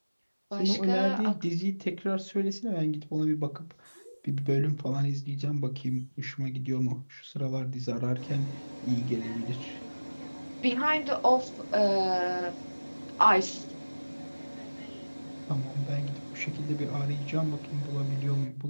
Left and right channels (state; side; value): inverted; both; correlation -1.00